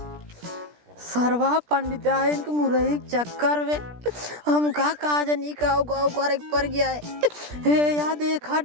सरवा पंडिताइन के मुरई के चक्कर में हमका काजनी का गाँव करे पर गया है। हे या देखा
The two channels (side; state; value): left; late; 17 ms